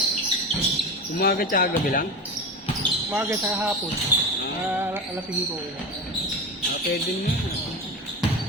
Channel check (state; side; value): normal; both; correlation 0.26